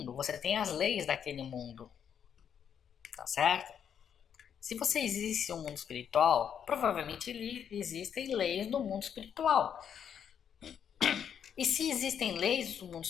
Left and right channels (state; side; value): quieter; right; 8.3 dB